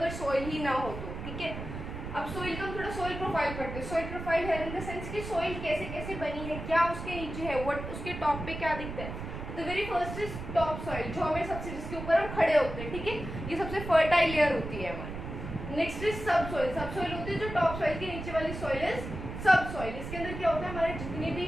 सॉइल ही ना हो तो, ठीक है। अब सॉइल का हम थोड़ा सॉइल प्रोफाइल पढ़ते हैं। सॉइल प्रोफाइल है इन द सेंस कि सॉइल कैसे कैसे बनी है, क्या उसके नीचे है, व्हाट उसके टॉप पे क्या दिखता है। The very first is top soil, जो हमें सबसे जिसके ऊपर हम खड़े होते हैं, ठीक है, ये सबसे फर्टाइल लेयर होती है हमारी। नेक्स्ट इज सब सॉइल, सब सॉइल होती है जो टॉप सॉइल के नीचे वाली सॉइल इज सब सॉइल। इसके अंदर क्या होता है, हमारे जितने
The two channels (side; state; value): right; noise; rumble, 8 dB below the sound